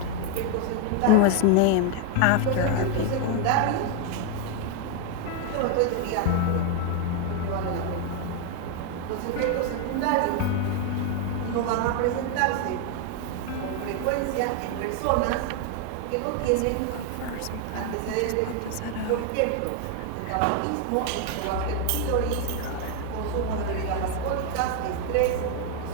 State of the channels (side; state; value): both; different; correlation 0.01